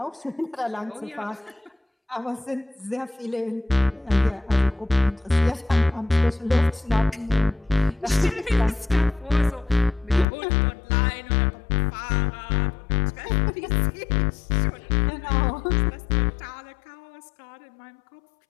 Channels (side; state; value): right; drops out; at 10.2 s